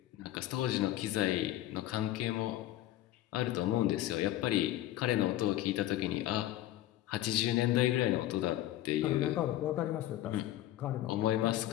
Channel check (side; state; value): right; quieter; 14.3 dB